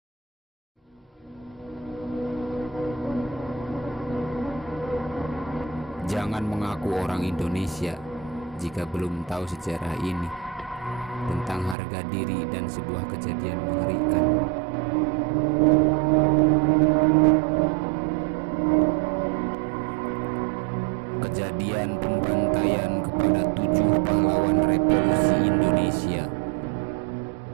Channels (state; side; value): drops out; left; at 11.8 s